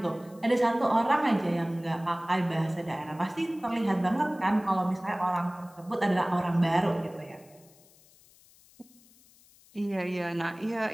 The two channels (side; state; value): left; noise; hiss, 27 dB below the sound